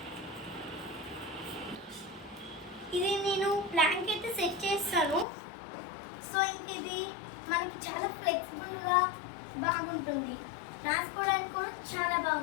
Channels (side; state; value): right; drops out; at 5.2 s